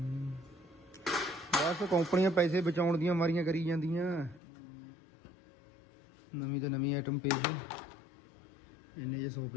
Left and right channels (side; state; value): right; drops out; at 4.4 s